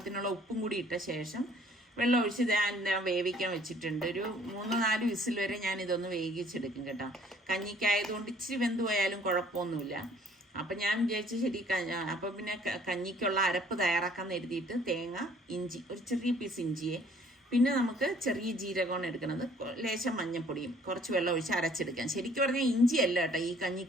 ഉപ്പും കൂടി ഇട്ട ശേഷം വെള്ളം ഒഴിച്ച് ഞാൻ വേവിക്കാൻ വെച്ചിട്ടുണ്ട്. ഒരു 3-4 വിസിൽ വരെ ഞാൻ ഇതൊന്ന് വേവിച്ചെടുക്കും കേട്ടോ. കഞ്ഞിക്കായതുകൊണ്ട് ഇച്ചിരി വെന്ത് പോയാലും കുഴപ്പമൊന്നുമില്ല. അപ്പം ഞാൻ വിചാരിച്ചു ശരി. അപ്പം പിന്നെ കഞ്ഞിക്കുള്ള അരപ്പ് തയ്യാറാക്കാൻ എഴുതിയിട്ട് തേങ്ങ, ഇഞ്ചി, ഒരു ചെറിയ പീസ് ഇഞ്ചിയെ, പിന്നെ നമുക്ക് ചെറിയ ജീരകമാണ് എടുക്കുന്നത്, ലേശം മഞ്ഞപ്പൊടിയും കുറച്ച് വെള്ളം ഒഴിച്ച് അരച്ചെടുക്കാം. ശരിക്കും പറഞ്ഞാൽ ഇഞ്ചിയല്ല കേട്ടോ ഈ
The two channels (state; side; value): normal; both; correlation 0.58